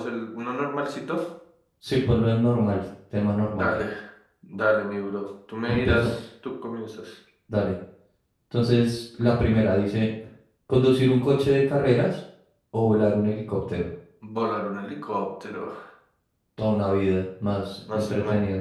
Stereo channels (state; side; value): identical; both; correlation 1.00